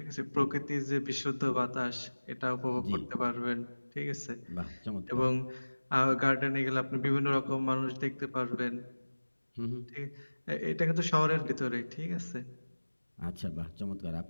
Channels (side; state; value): both; inverted; correlation -1.00